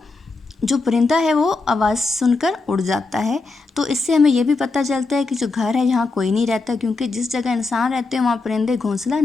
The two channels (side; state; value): right; quieter; 3.7 dB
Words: जो परिंदा है वो आवाज़ सुनकर उड़ जाता है। तो इससे हमें ये भी पता चलता है कि जो घर है यहाँ कोई नहीं रहता क्योंकि जिस जगह इंसान रहते हैं वहाँ परिंदे घोंसला